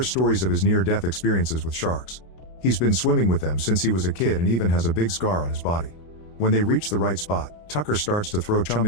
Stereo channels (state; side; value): late; right; 33 ms